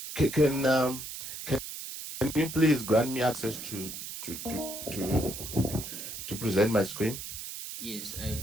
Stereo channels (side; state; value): right; noise; hiss, 8 dB below the sound